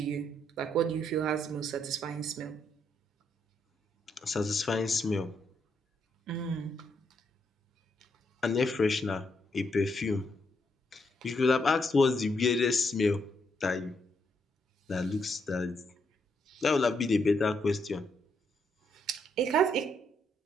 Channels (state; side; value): normal; both; correlation 0.77